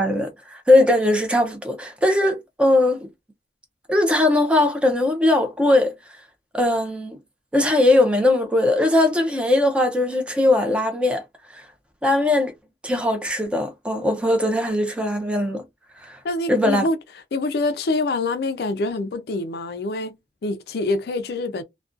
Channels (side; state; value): both; normal; correlation 0.71